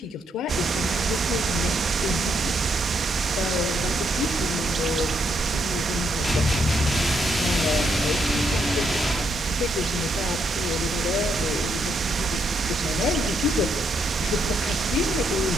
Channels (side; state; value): both; normal; correlation 0.76